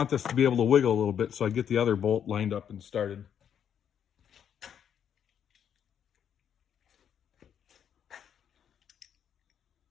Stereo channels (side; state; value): right; quieter; 8.7 dB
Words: this to be able to wiggle a little bit so I get the other bolt lined up and started.